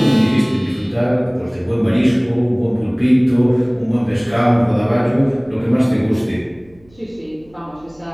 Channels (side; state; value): right; noise; hum, 30 dB below the sound